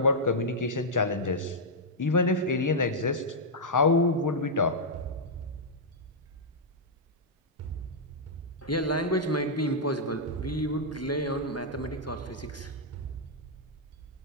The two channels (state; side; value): normal; both; correlation -0.07